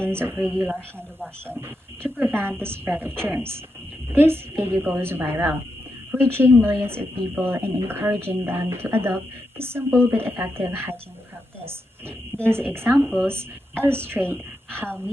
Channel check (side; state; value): both; normal; correlation 0.85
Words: of regular hand washing to prevent the spread of germs. This video goes viral, reaching millions of people and encouraging them to adopt the simple but effective hygiene practice. These examples illustrate how